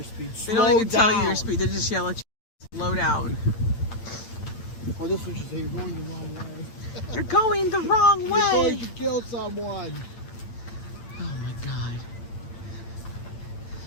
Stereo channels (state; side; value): late; right; 8.8 ms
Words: speed. They don't even tell you your speed. They just yell at you. Slow down. Oh, this one should say you're going the wrong way. You're going the wrong You're way. going to kill someone. Oh my God.